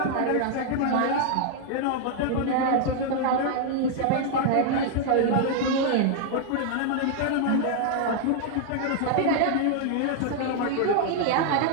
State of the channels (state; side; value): different; both; correlation 0.00